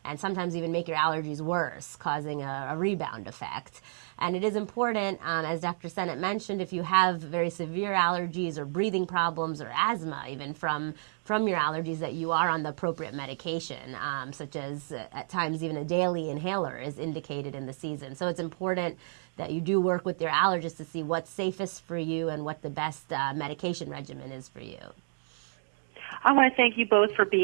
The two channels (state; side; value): silent; left; digital silence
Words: and sometimes even make your allergies worse, causing a rebound effect. And it is important, as Dr. Sennett mentioned, if you have very severe allergies or breathing problems or asthma, even from your allergies, that you are on the appropriate medication, such as at times even a daily inhaler is indicated in the season. So it's important that you do work with your allergist to see what's safest for you and what the best medication regimen is for you. I want to thank you both for